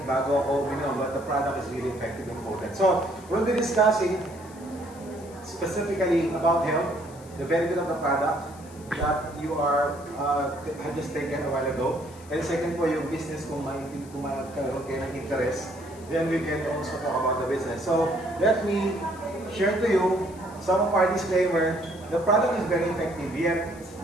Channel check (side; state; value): left; noise; hiss, 23 dB below the sound